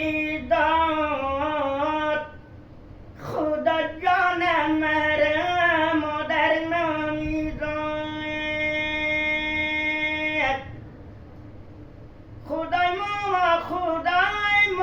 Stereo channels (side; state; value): both; identical; correlation 1.00